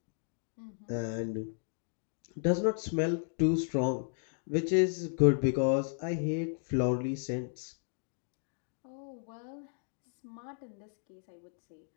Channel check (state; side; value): silent; right; digital silence